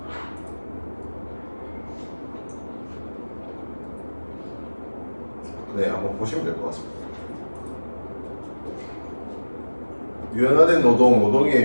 네, 한번 보시면 될 것 같습니다. 유연화된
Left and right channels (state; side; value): inverted; both; correlation -1.00